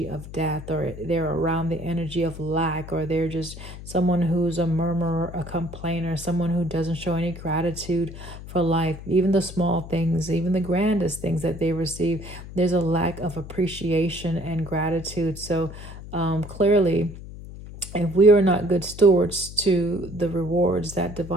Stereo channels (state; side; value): noise; left; hum, 13 dB below the sound